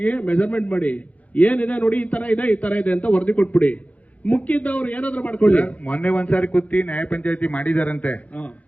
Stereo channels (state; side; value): late; right; 0.068 ms